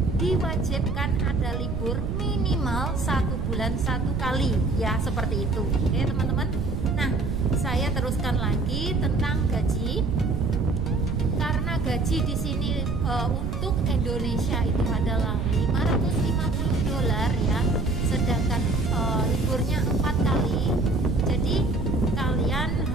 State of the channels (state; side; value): noise; right; rumble, 3 dB below the sound